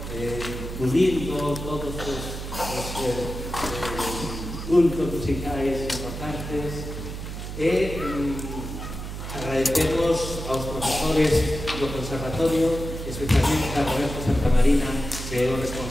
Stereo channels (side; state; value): right; noise; hum, 8 dB below the sound